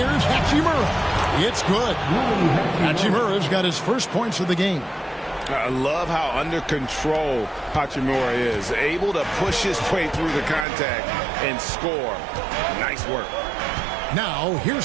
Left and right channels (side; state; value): left; drops out; at 10.7 s